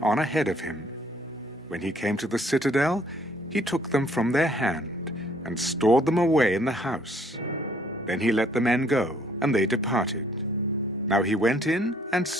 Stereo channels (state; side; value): normal; both; correlation 0.63